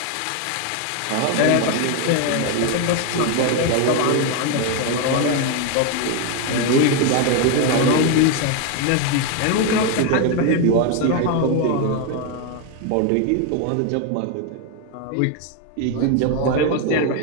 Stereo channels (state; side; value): different; both; correlation 0.01